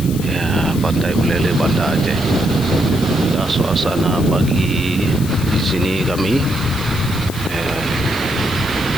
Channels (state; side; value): noise; left; hiss, 13 dB below the sound